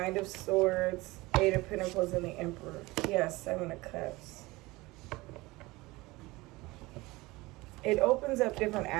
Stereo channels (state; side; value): quieter; left; 21.4 dB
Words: of Swords, Eight of Pentacles, and the Emperor. Yes, Seven of Cups. It opens up different